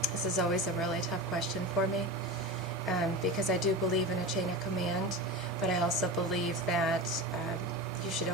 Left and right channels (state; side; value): normal; both; correlation 0.26